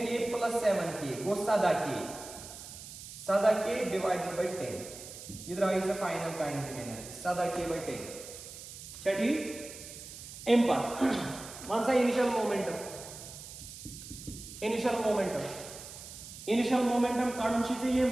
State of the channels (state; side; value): noise; right; hiss, 13 dB below the sound